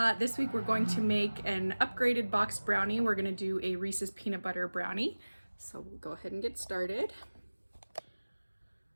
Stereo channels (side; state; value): both; inverted; correlation -1.00